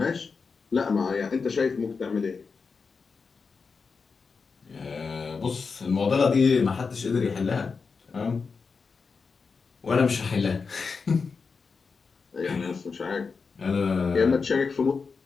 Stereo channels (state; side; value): quieter; right; 5.0 dB